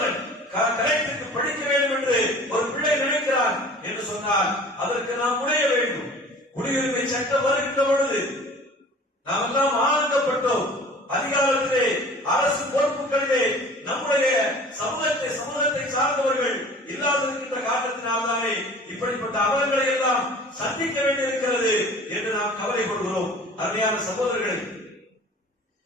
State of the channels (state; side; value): normal; both; correlation 0.45